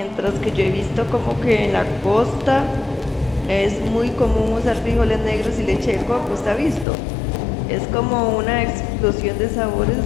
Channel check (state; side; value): drops out; right; at 6.9 s